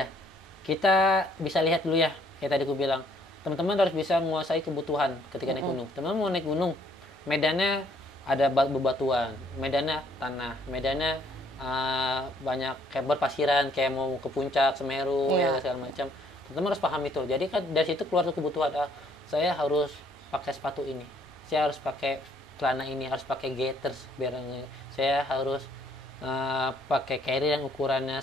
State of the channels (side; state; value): both; normal; correlation 0.65